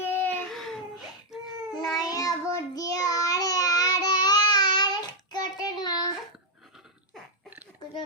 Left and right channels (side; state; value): both; normal; correlation -0.03